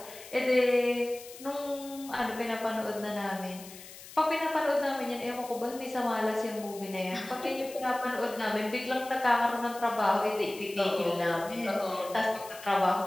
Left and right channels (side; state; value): left; noise; hiss, 16 dB below the sound